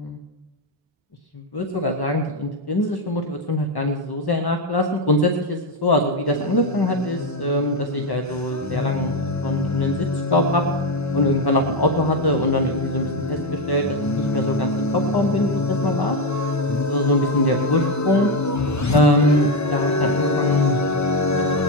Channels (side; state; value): both; normal; correlation 0.08